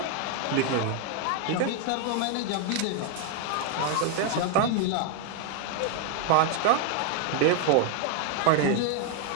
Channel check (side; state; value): both; different; correlation 0.00